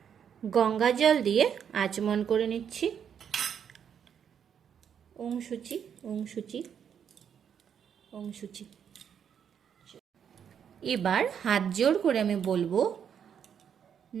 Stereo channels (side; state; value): left; quieter; 8.1 dB